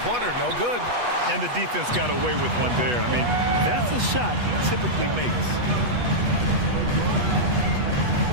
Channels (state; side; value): late; left; 8.2 ms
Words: no good. And the defense got away with one there. I mean, that's a shot he typically makes.